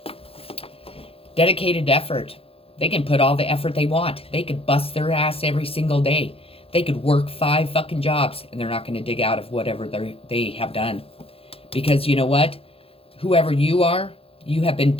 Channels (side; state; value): right; late; 0.27 ms